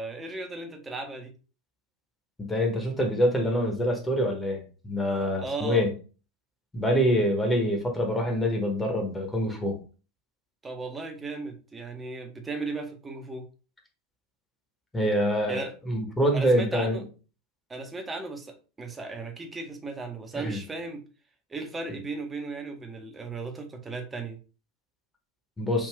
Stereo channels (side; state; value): both; normal; correlation 0.53